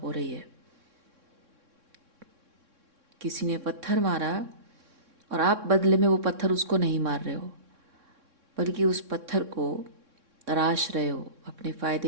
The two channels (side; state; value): left; late; 3.6 ms